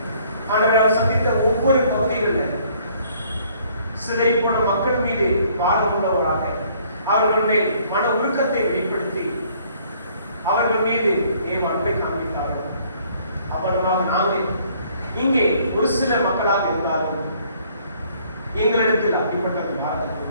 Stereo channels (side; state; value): both; inverted; correlation -0.61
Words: ஆண்டவரால் சந்தித்த ஒவ்வொரு பகுதிகளில் சிதறிப்போன மக்கள் மீது பாரமுள்ளவராக அவர்கள் மேல் மன உருக்கத்தை வெளிப்படுத்தி அவர்கள் மீது தேவ அன்பை காண்பித்தார்கள். அவ்வளவாக நாங்கள் இங்கே ஒரு சில மக்களாக இருந்தாலும் எங்களிடத்தில் அப்படிப்பட்ட பாரதத்தை